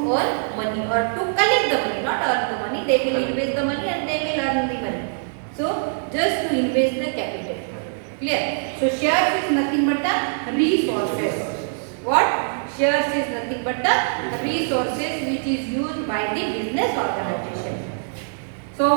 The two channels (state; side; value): silent; left; digital silence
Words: earn money or to collect the money, not earn the money. They will invest the money and they will earn the money. So just to invest the capital. Clear? So shares is nothing but the resources. What? Shares is nothing but the resources which is used by the business organization. So